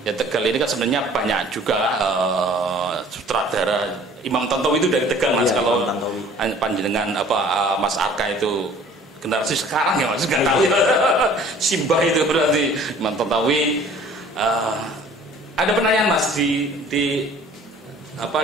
Ya Tegal ini kan sebenarnya banyak juga sutradara. Imam Tontowi itu dari Tegal Mas. Kalau panjenengan Mas Arka itu generasi sekarang ya Mas, nggak tahu ya. Simbah itu berarti Imam Tontowi. Ada penanyaan Mas di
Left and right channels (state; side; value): normal; both; correlation 0.51